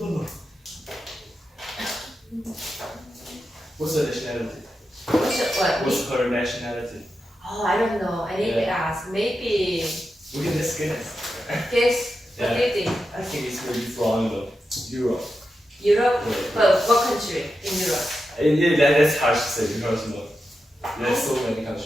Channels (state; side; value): normal; both; correlation 0.89